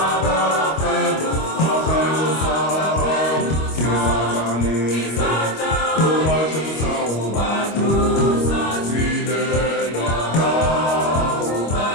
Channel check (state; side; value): late; right; 25 ms